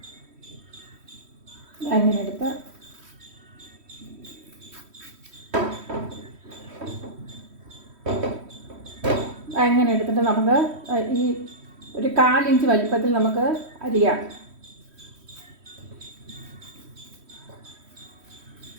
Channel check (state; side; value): late; left; 3.1 ms